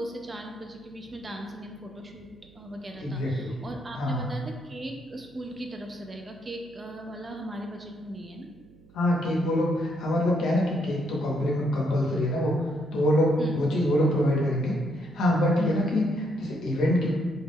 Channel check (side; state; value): right; noise; hum, 26 dB below the sound